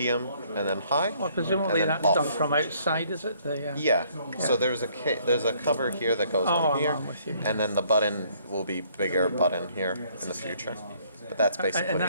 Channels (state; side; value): inverted; both; correlation -0.64